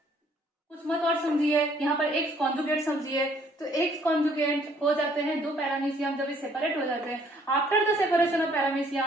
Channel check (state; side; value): normal; both; correlation 0.62